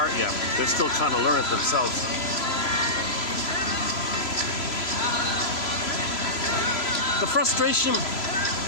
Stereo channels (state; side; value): late; right; 3.0 ms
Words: yet. They're still trying to learn it themselves. The frustration.